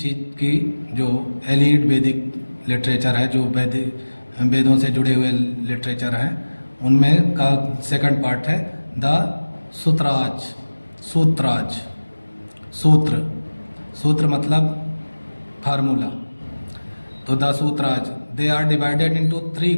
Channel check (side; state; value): both; inverted; correlation -1.00